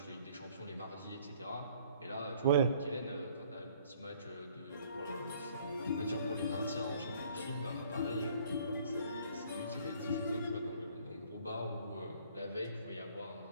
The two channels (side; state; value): both; inverted; correlation -0.58